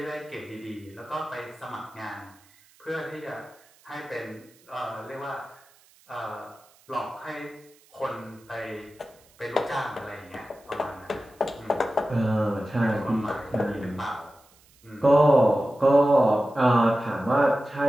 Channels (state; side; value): noise; right; hiss, 29 dB below the sound